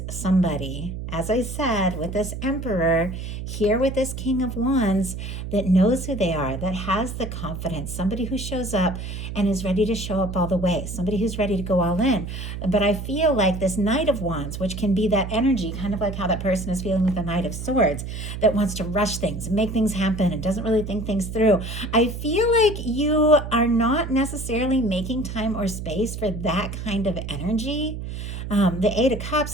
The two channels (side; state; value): right; noise; hum, 7 dB below the sound